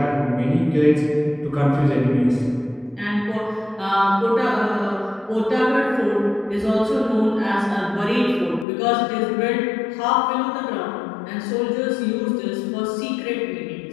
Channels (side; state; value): right; drops out; at 8.7 s